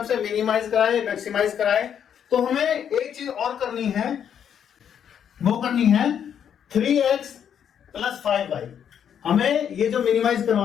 मिनिमाइज कराए मैक्सिमाइज कराए तो हमें एक चीज और करनी है, वो करनी है 3x + 5y। हमें ये जो मिनिमाइज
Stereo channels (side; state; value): right; quieter; 8.6 dB